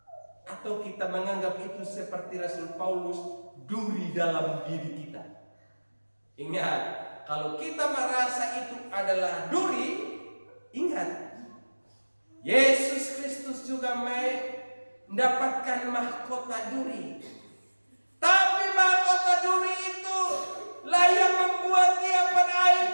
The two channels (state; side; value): inverted; both; correlation -1.00